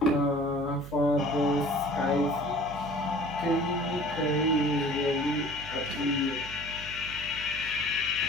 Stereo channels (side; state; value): right; noise; hum, 14 dB below the sound